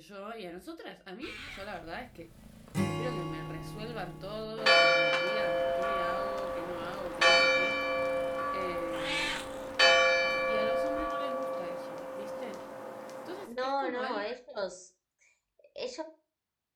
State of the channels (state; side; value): identical; both; correlation 1.00